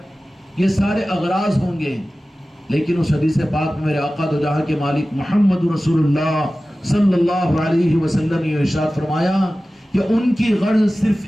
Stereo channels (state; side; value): normal; both; correlation 0.96